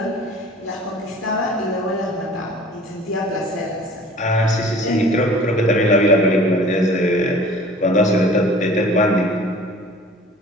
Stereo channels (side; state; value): both; normal; correlation 0.47